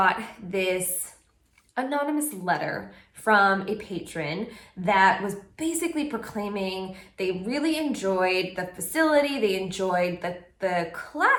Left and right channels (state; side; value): identical; both; correlation 1.00